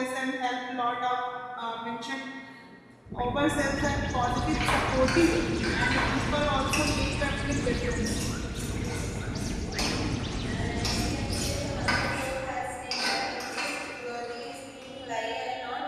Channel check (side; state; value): both; identical; correlation 1.00